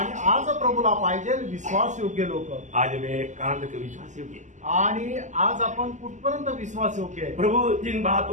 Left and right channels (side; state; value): left; late; 0.35 ms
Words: आज प्रभूला पाहिजे विश्वास योग्य लोक. आज मैं कहां तक विश्वास योग्य. आणि आज आपण कुठपर्यंत विश्वास योग्य आहे. प्रभु जिन